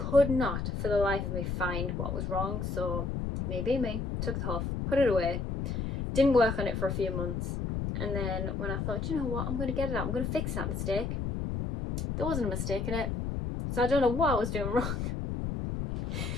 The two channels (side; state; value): left; noise; rumble, 2 dB below the sound